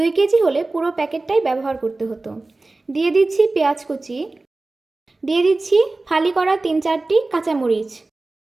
কেজি হলে পুরো প্যাকেটটাই ব্যবহার করতে হতো। দিয়ে দিচ্ছি পেঁয়াজ কুচি, দিয়ে দিচ্ছি ফালি করা 3-4টি কাঁচামরিচ।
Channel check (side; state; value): left; quieter; 3.2 dB